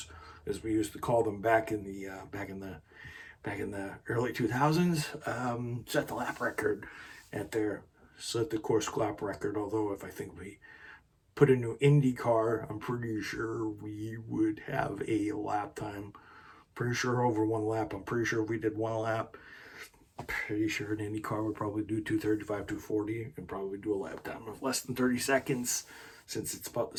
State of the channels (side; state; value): both; identical; correlation 1.00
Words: as we used to call them back in the early 2000s, set the lap record set the course lap record. Although if I think we put a new Indy car, I'm pretty sure we would have a lap time. Pretty sure over one lap. I'm pretty sure if we did one lap, I'm pretty sure an Indy car would probably do 235, 240, and probably do a lap time of less than 30 seconds, since it's about the